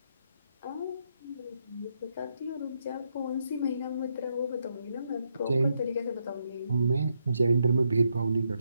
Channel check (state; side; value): inverted; both; correlation -0.79